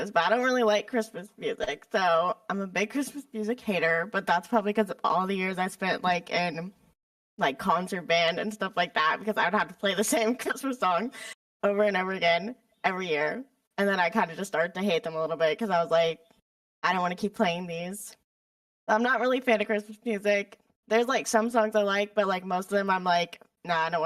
but I don't really like Christmas music. So I'm a big Christmas music hater, but that's probably because of all the years I spent like in like concert band and stuff like that, because I would have to play the same Christmas song over and over again every year. And then I kind of just started to hate them a little bit because I was like, I don't want to keep playing these. I'm not really a fan of Christmas music. There's like some songs I like, but like most of them I'm like, nah, I don't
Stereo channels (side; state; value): both; identical; correlation 1.00